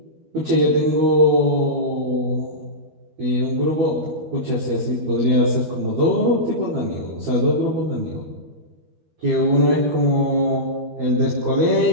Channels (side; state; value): left; late; 13 ms